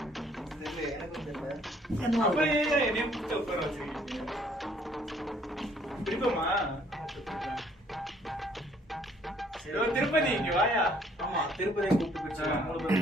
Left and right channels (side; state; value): both; normal; correlation 0.62